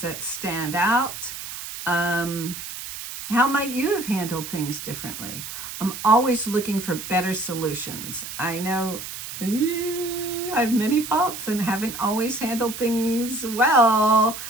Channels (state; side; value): noise; right; hiss, 9 dB below the sound